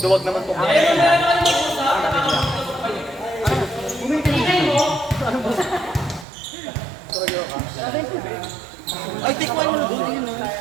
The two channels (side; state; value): left; drops out; at 6.2 s